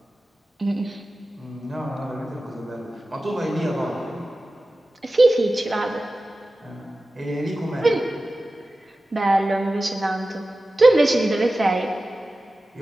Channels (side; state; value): both; normal; correlation 0.95